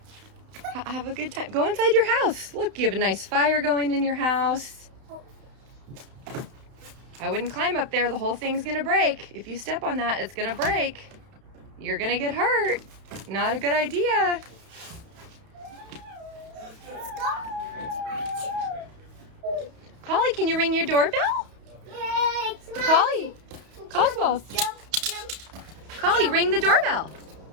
Have a good time. Go inside your house. Look, you have a nice fire going in your house. I wouldn't climb up there. The whole thing's gonna break. If you step on that, it's gonna break. You're gonna get hurt. Not a good idea. Let's go. Collie, can you ring your doorbell? Yay, it's my- Collie, Cosmos. Jump, jump. Collie, ring the doorbell.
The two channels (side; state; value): left; late; 32 ms